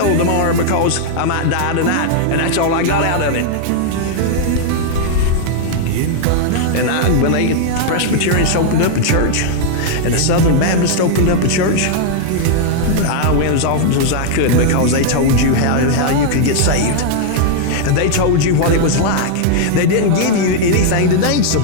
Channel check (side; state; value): both; different; correlation -0.01